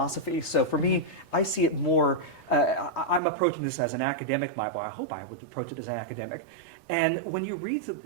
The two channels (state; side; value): drops out; left; at 3.2 s